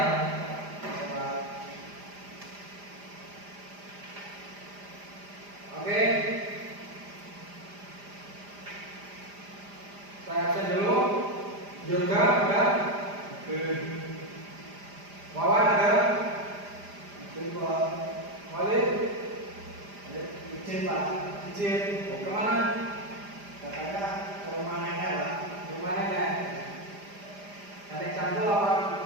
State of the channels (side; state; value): left; late; 5.0 ms